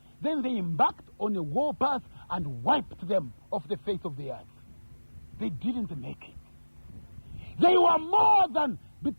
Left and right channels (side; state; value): both; inverted; correlation -1.00